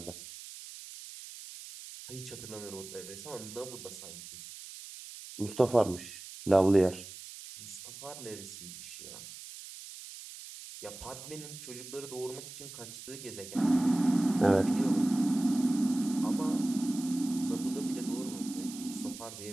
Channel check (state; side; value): noise; right; hiss, 13 dB below the sound